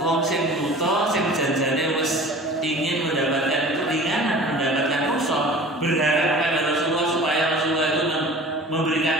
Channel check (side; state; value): both; normal; correlation 0.42